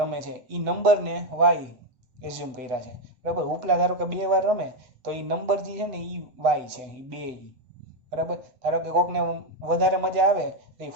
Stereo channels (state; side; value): late; left; 8.2 ms